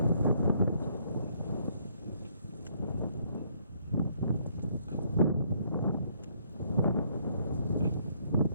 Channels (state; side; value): inverted; both; correlation -0.68